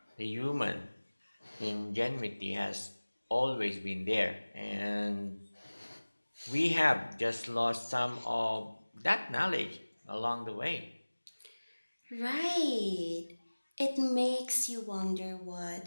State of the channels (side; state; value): both; inverted; correlation -1.00